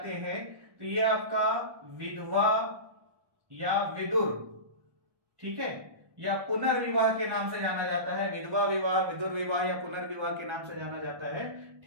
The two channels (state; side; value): late; left; 1.2 ms